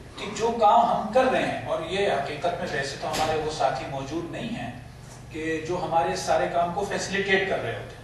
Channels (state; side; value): identical; both; correlation 1.00